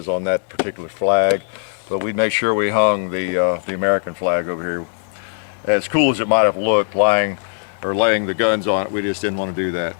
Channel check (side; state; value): right; silent; 57 dB below the other